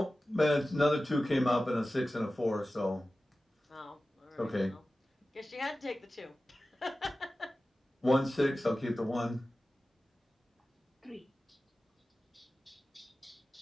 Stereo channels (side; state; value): both; normal; correlation 0.95